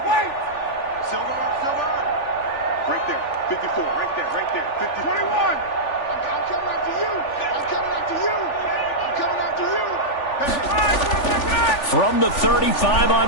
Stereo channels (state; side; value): late; right; 3.4 ms